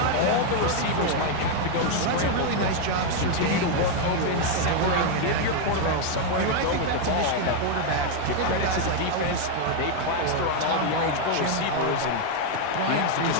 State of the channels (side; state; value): both; different; correlation 0.01